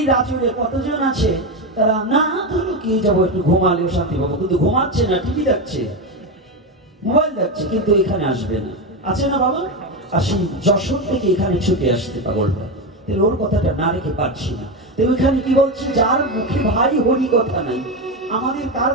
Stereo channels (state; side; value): normal; both; correlation 0.14